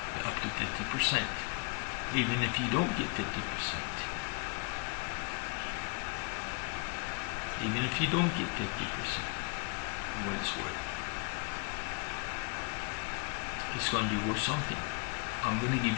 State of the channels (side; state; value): right; quieter; 35.0 dB